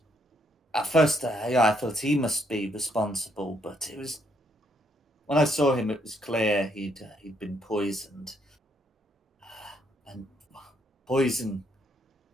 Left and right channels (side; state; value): both; normal; correlation 0.72